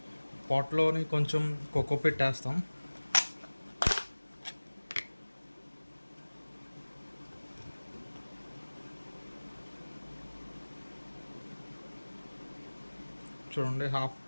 పాట్లోని కొంచెం కోకోపిట్ వేస్తాం. చూడండి, హాఫ్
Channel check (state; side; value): inverted; both; correlation -1.00